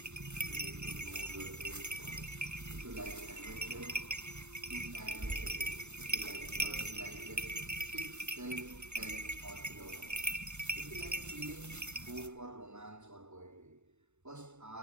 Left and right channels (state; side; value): late; left; 0.82 ms